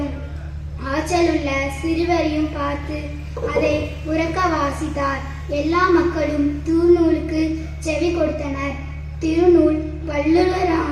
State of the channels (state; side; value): identical; both; correlation 1.00